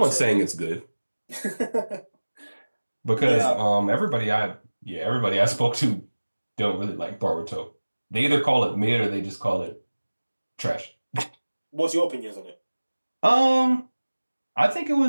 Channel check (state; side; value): inverted; both; correlation -1.00